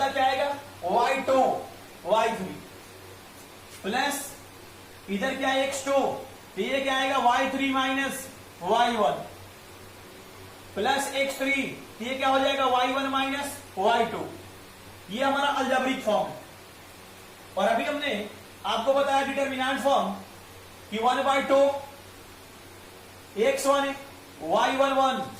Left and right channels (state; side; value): identical; both; correlation 1.00